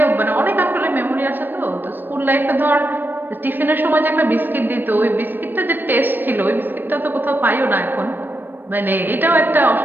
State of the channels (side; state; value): left; late; 0.093 ms